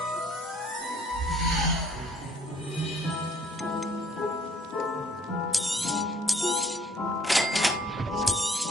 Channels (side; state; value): both; normal; correlation 0.59